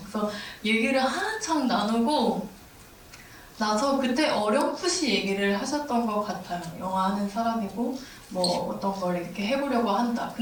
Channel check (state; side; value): identical; both; correlation 1.00